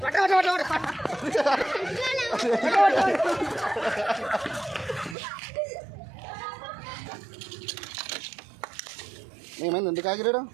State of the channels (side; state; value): left; drops out; at 5.2 s